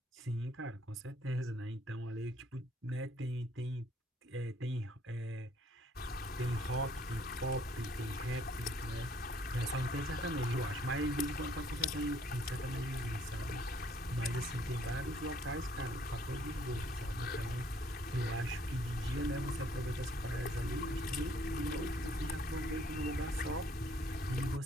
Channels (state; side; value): normal; both; correlation 0.63